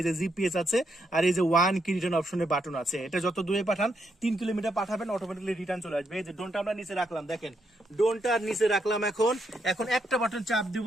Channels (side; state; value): both; normal; correlation 0.79